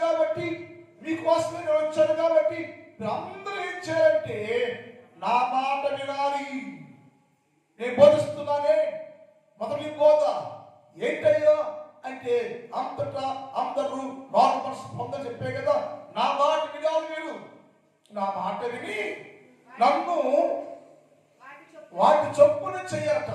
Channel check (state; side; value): identical; both; correlation 1.00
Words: కాబట్టి, మీకోసమే నేను వచ్చాను కాబట్టి మీరు అందరూ ఏం చేయాలంటే నా మాట వినాలి. నేను బోధిస్తున్నానే మొదటి బోధ ఏంటయ్యా అంటే అంతటా అందరూ మారు మనసు పొందని చెప్పే కదా. నా మాట వినాలి. మీరు నా మాట విని నన్ను వాటి చొప్పున చెయ్యాలట.